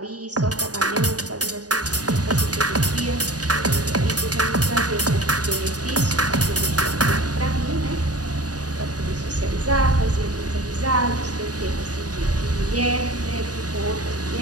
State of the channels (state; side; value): late; left; 0.68 ms